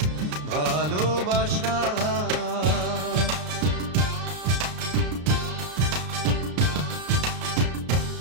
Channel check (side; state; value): left; late; 33 ms